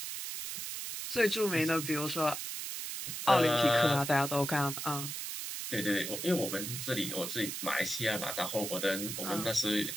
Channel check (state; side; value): noise; right; hiss, 5 dB below the sound